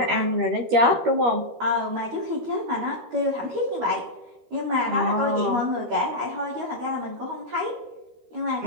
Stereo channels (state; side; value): late; left; 13 ms